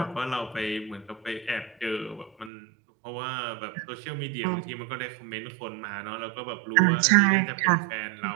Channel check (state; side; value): drops out; left; at 2.5 s